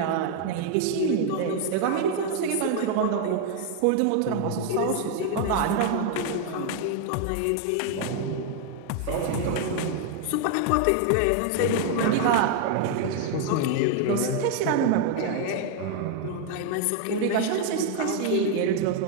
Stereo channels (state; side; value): different; both; correlation 0.00